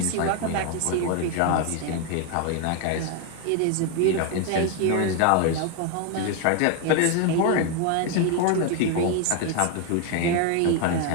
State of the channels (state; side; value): different; both; correlation 0.01